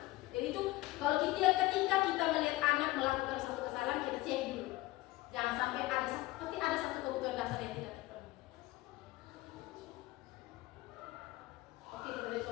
sampai pasti ada satu kebutuhan dasar yang tidak terpenuhi. Oke, kita beri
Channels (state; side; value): quieter; right; 18.5 dB